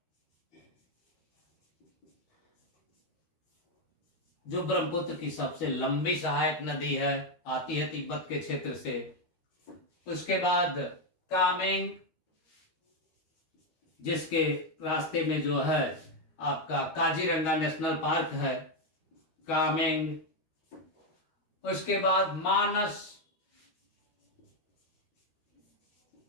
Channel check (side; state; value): right; late; 13 ms